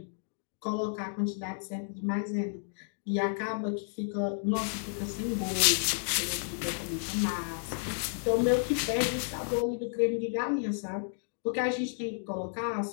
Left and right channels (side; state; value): right; silent; digital silence